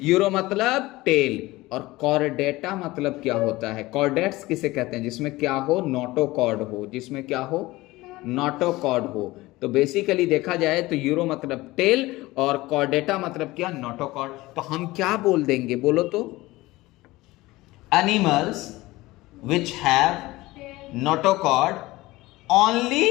यूरो मतलब टेल, और कॉर्डेटा मतलब क्या होता है। कॉर्डेट्स किसे कहते हैं, जिसमें क्या हो, नोटोकॉर्ड हो, जिसमें क्या हो, नोटोकॉर्ड हो। तो बेसिकली देखा जाए तो यूरो मतलब टेल और कॉर्डेटा मतलब क्या, नोटोकॉर्ड। तो हम क्या बोल देंगे, बोलो तो, animals which have notochord only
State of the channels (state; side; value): quieter; right; 19.4 dB